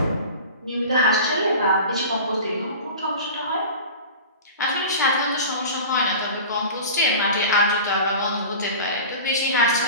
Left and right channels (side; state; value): both; inverted; correlation -0.35